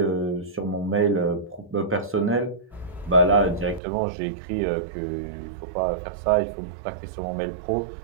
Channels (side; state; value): left; drops out; at 3.8 s